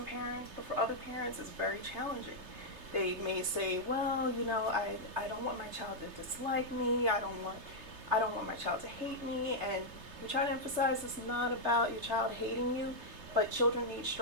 parents, but for other parents it's very challenging. They may say, well, I don't want my child to dislike me, I don't want my child to hate me, and we try to emphasize it's not about your child hating you, but children need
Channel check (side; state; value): left; late; 3.3 ms